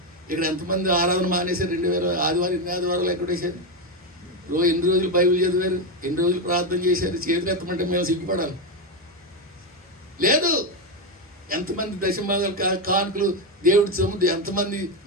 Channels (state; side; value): normal; both; correlation 0.09